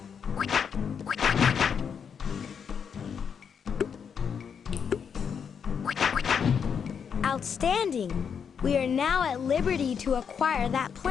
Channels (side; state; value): right; quieter; 7.0 dB